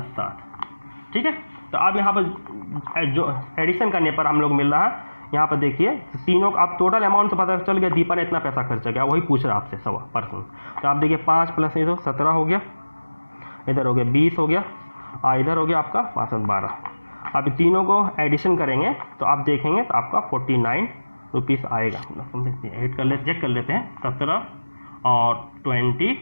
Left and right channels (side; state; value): both; inverted; correlation -1.00